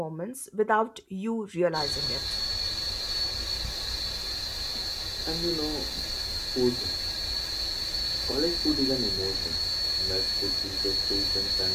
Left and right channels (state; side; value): identical; both; correlation 1.00